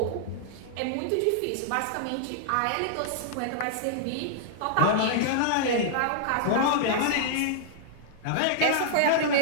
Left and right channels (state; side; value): different; both; correlation -0.01